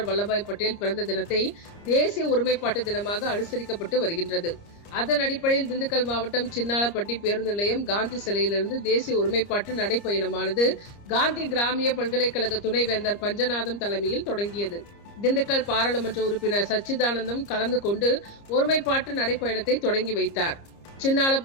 வல்லபாய் பட்டேல் பிறந்த தினத்தை தேசிய ஒருமைப்பாட்டு தினமாக அனுசரிக்கப்பட்டு வருகின்றது. அதன் அடிப்படையில் திண்டுக்கல் மாவட்டம் சின்னாளப்பட்டி பேருந்து நிலையம் காந்தி சிலையிலிருந்து தேசிய ஒருமைப்பாட்டு நடைப்பயணமானது காந்தி கிராமிய பல்கலைக்கழக துணைவேந்தர் பஞ்சநாதம் தலைமையில் தொடங்கியது. திண்டுக்கல் பாராளுமன்ற உறுப்பினர் சச்சிதானந்தம் கலந்து கொண்டு ஒருமைப்பாட்டு நடைப்பயணத்தை தொடங்கி வைத்தார்.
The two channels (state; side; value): late; right; 30 ms